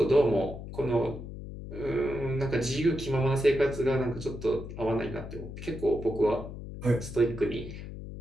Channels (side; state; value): left; noise; hum, 10 dB below the sound